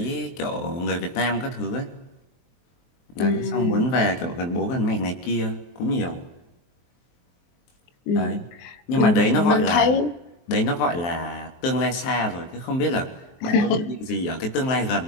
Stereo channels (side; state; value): right; late; 23 ms